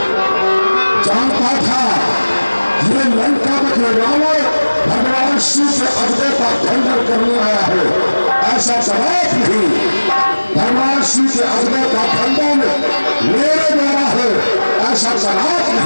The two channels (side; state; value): both; inverted; correlation -1.00